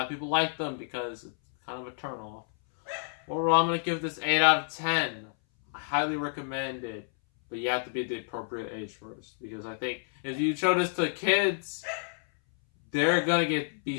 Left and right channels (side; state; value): right; silent; 58 dB below the other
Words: of people like them because it's kind of a turnoff. Overall, I'm going to give this 8 out of 10. I highly recommend it, but you have to be the appropriate age first, because I think if you show this to kids, they're going to be